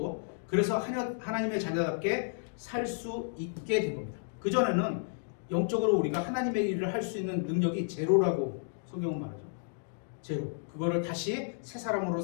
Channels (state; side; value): silent; right; digital silence